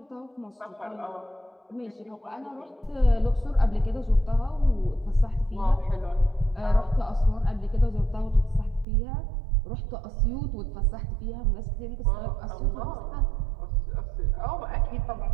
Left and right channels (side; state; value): left; drops out; at 8.8 s